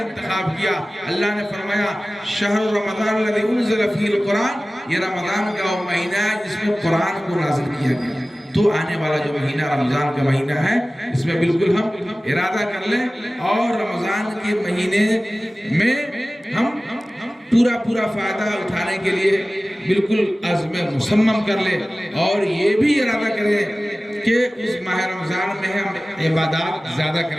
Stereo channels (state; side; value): normal; both; correlation 0.97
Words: کیا۔ اللہ نے فرمایا شہر رمضان الذی انزل فیہ القرآن، یہ رمضان کا وہ مہینہ ہے جس میں قرآن کو نازل کیا گیا۔ تو آنے والا جو مہینہ رمضان کا مہینہ ہے، اس میں بالکل ہم ارادہ کر لیں اور رمضان کے مہینے میں ہم پورا فائدہ اٹھانے کے لیے بالکل عزم مصمم کر لیں، اور یہ بھی ارادہ کریں کہ اس ماہ رمضان میں ہم عبادات زیادہ